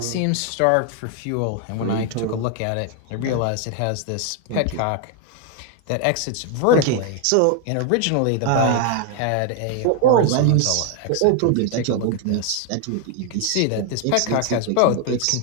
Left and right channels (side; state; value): both; different; correlation 0.01